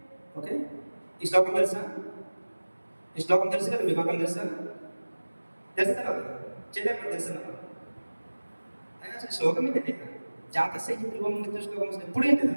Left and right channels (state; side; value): inverted; both; correlation -1.00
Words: ఓకే, ఈ శ్లోకం తెలుసా? కదా మీకు? అర్థం తెలుసా కదా? చేయలేకపోతే తెలుసా? అసలు శ్లోకం ఏంటంటే జాతస్య హి ధ్రువం మృత్యుః శ్లోకం ఎప్పుడు ఏంటి?